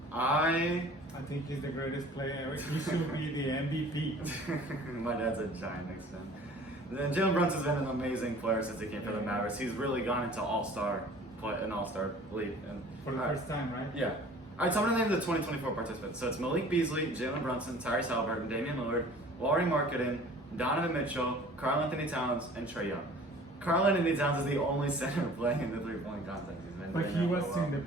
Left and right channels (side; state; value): both; normal; correlation 0.48